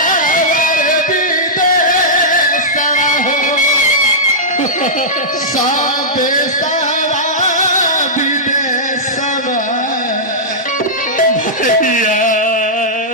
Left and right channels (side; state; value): both; normal; correlation -0.12